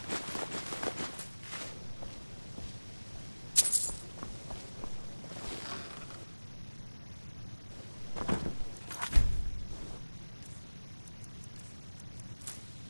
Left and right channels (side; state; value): both; inverted; correlation -1.00